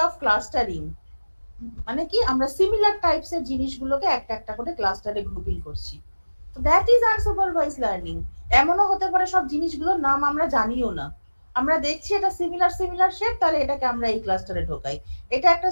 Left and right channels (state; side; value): inverted; both; correlation -1.00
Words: অফ ক্লাস্টারিং মানে কি, আমরা সিমিলার টাইপস এর জিনিসগুলোকে একটা একটা করে ক্লাস্টারে গ্রুপিং করছি। তো দ্যাট ইজ আনসুপারভাইজ লার্নিং। এমনও হতে পারে সব জিনিসগুলোর নাম আমরা জানিও না, আমরা দেখছি এটা সিমিলার শেপ, তাহলে এটাকে আমরা এই ক্লাস্টারে ঢোকাই, এটা একটা